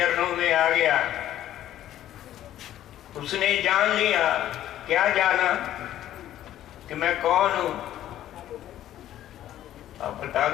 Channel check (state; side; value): quieter; right; 12.4 dB